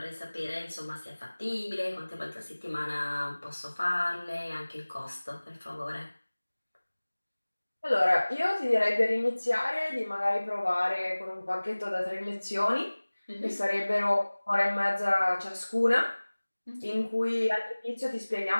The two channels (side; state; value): both; inverted; correlation -1.00